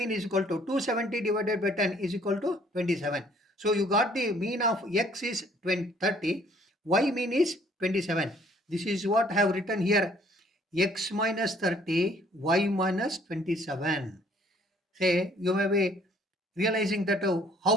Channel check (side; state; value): both; normal; correlation 0.60